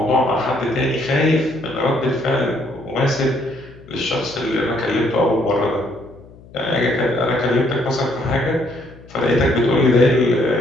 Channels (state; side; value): noise; left; hum, 22 dB below the sound